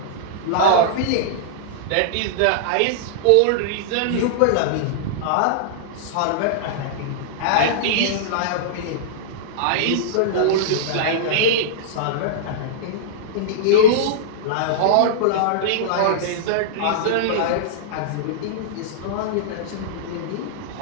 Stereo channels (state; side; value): different; both; correlation -0.02